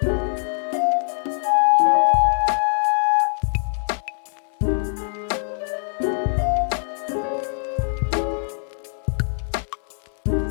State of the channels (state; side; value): silent; right; 61 dB below the other